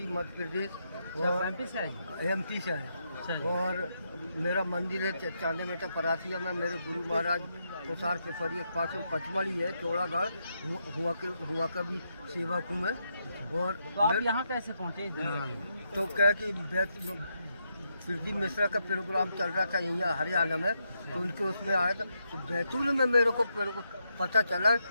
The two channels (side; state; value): both; inverted; correlation -0.81